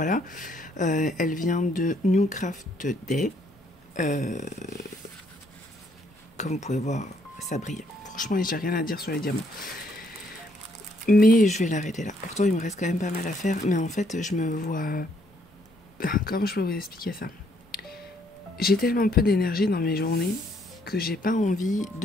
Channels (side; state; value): both; normal; correlation 0.69